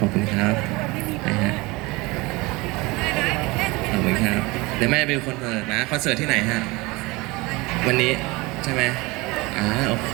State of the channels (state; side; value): quieter; left; 23.5 dB